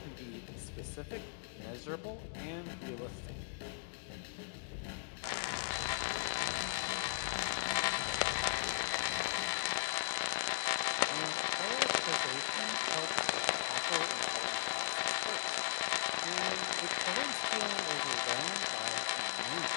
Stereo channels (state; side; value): silent; right; 53 dB below the other